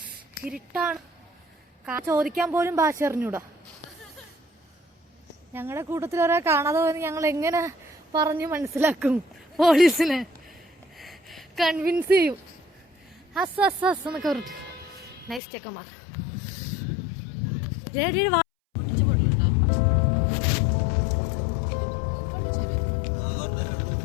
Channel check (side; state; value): right; drops out; at 15.4 s